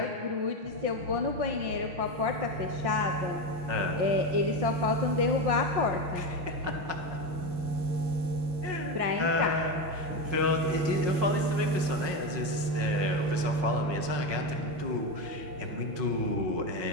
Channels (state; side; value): late; left; 5.6 ms